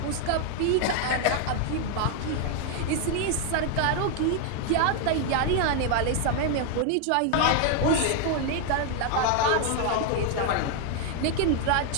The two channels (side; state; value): both; different; correlation 0.00